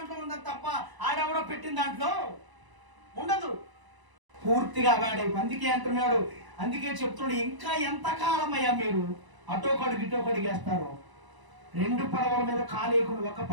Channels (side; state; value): left; late; 1.0 ms